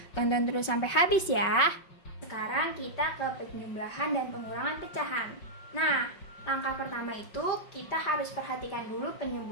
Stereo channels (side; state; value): right; late; 5.4 ms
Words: Tonton terus sampai habis ya. Sekarang kita ke penjumlahan dan pengurangan pecahan. Nah, langkah pertama itu kita harus perhatikan dulu